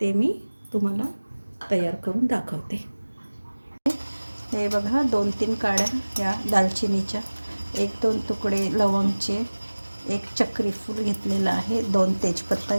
मी तुम्हाला तयार करून दाखवते. हे बघा 2-3 काड्या या दालचिनीच्या, 1-2 तुकडे लवंगचे, 1 चक्री फूल घेतलेलं आहे, 2 तेजपत्ता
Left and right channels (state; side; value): inverted; both; correlation -1.00